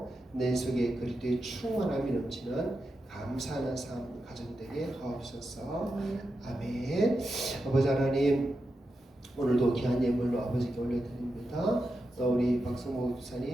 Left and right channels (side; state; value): both; normal; correlation 0.88